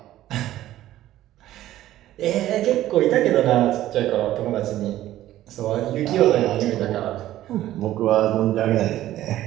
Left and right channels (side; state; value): left; quieter; 13.9 dB